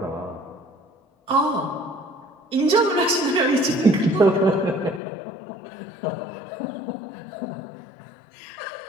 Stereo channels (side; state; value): right; drops out; at 5.0 s